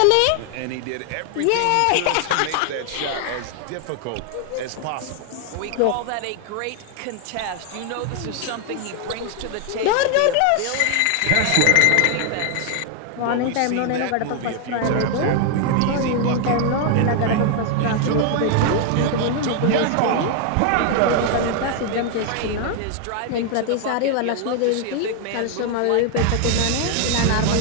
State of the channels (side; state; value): both; different; correlation 0.00